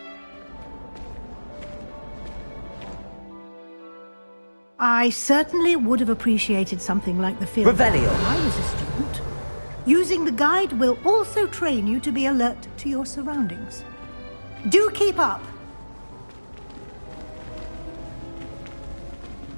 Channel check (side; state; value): both; inverted; correlation -1.00